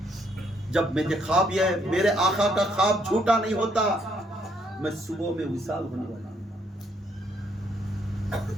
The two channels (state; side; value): normal; both; correlation 0.71